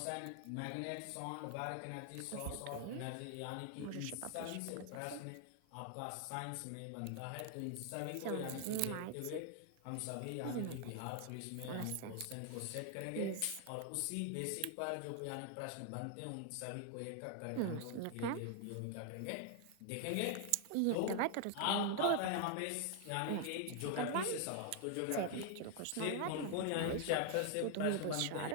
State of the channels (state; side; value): different; both; correlation 0.00